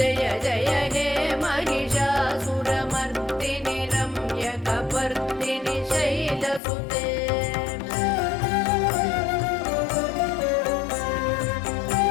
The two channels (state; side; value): drops out; right; at 6.6 s